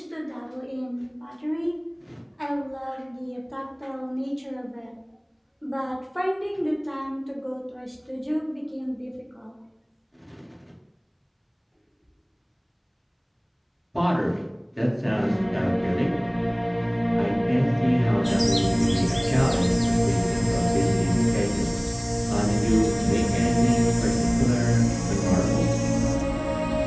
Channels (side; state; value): both; identical; correlation 1.00